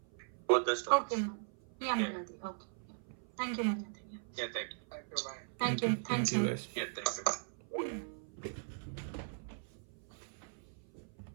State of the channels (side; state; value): left; silent; 52 dB below the other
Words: both the stories. Okay, ma'am. Yeah, Malati. Okay. Yeah. Thank you, Malati. Yeah. Yeah, thank you. Thank you. Bye. Thank you. Thank Thanks, you, sir. guys. Yeah,